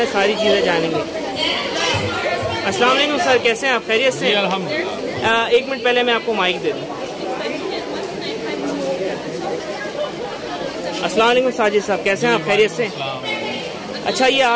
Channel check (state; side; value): identical; both; correlation 1.00